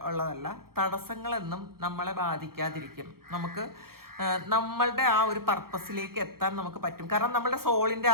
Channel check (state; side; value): late; left; 0.93 ms